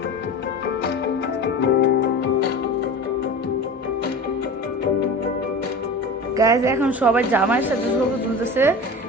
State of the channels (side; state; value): both; normal; correlation 0.32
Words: গাইস এখন সবাই জামাইয়ের সাথে ছবি তুলতেছে।